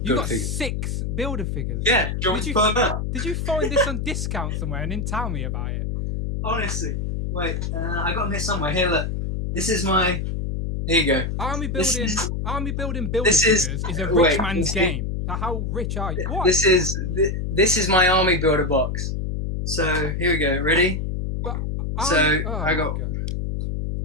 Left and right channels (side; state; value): left; noise; hum, 2 dB below the sound